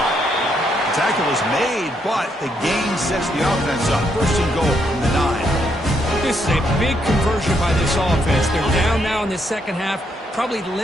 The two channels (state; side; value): normal; both; correlation 0.75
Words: The tackle is made, but the gain sets the offense up. 1st and goal from the 9. This is a big conversion by this offense. They're down now in the second half. Probably